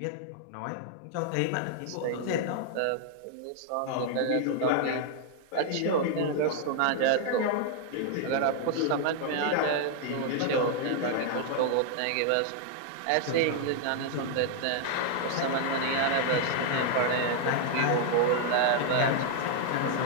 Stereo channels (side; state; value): both; different; correlation 0.00